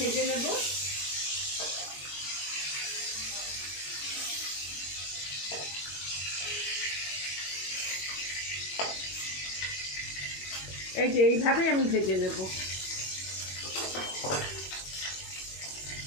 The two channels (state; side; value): late; right; 21 ms